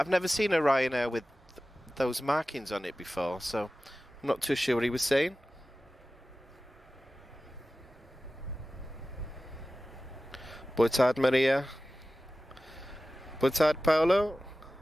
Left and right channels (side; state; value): both; normal; correlation 0.96